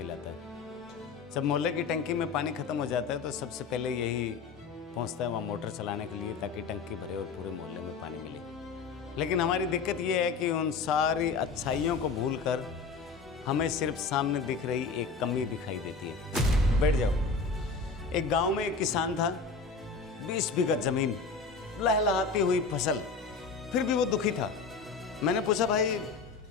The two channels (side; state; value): right; quieter; 4.7 dB